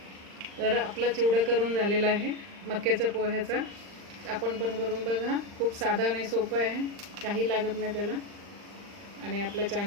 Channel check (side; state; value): left; late; 39 ms